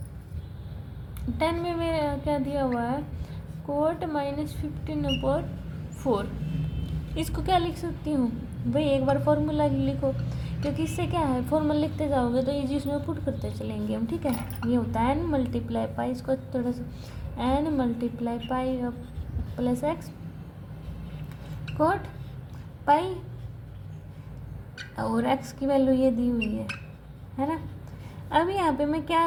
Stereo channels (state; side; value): identical; both; correlation 1.00